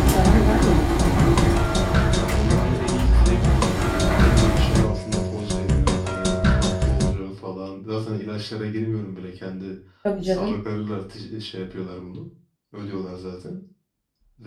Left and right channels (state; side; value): identical; both; correlation 1.00